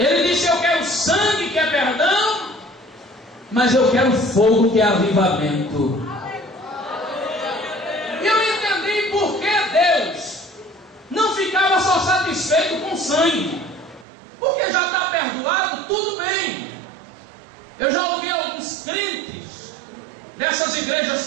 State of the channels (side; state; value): left; drops out; at 14.1 s